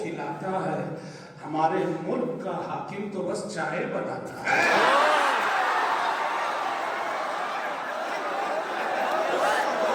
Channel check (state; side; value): identical; both; correlation 1.00